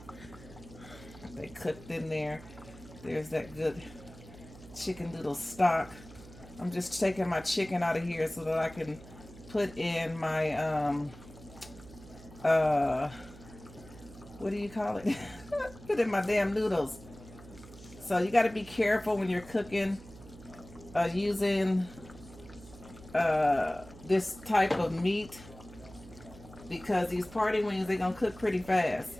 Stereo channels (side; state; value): right; noise; hum, 18 dB below the sound